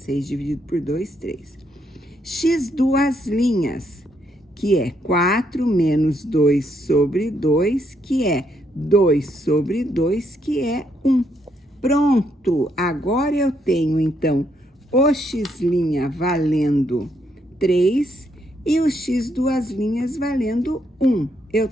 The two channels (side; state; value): both; normal; correlation 0.75